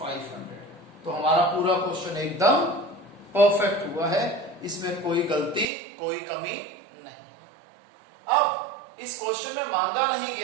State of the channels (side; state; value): left; drops out; at 5.7 s